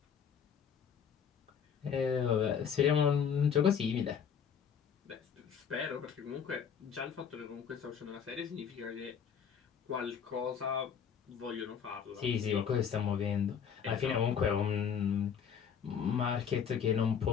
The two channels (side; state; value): right; quieter; 7.4 dB